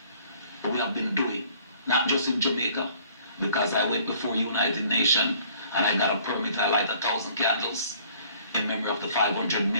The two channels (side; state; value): both; inverted; correlation -0.56